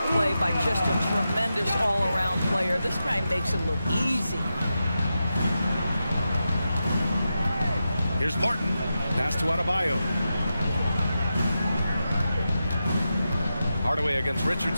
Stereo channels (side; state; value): both; inverted; correlation -0.89